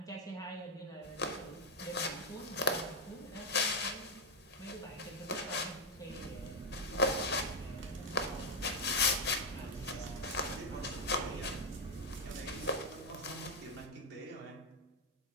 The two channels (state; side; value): normal; both; correlation 0.01